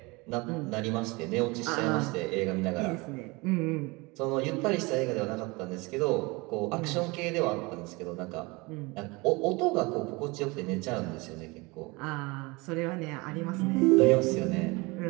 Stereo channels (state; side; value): quieter; left; 25.2 dB